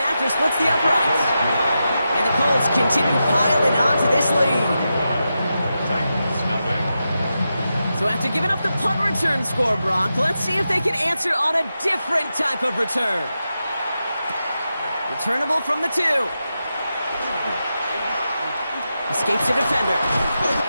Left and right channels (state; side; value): inverted; both; correlation -0.89